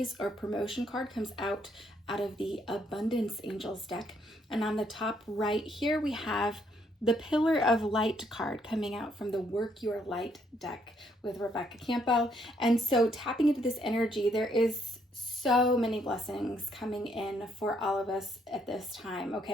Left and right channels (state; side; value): normal; both; correlation 0.71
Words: or promotion card comes out of the Abundance Angels deck. And on the top right here, we have the Pillar of Light card coming out from the Work Your Light deck with Rebecca Campo. And so tapping into this energy, there is so many blessings coming in for all of us at this time,